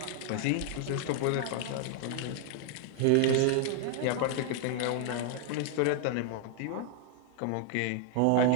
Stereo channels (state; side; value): different; both; correlation 0.00